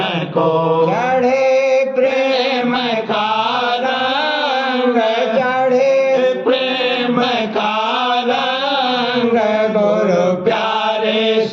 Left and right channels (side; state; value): both; identical; correlation 1.00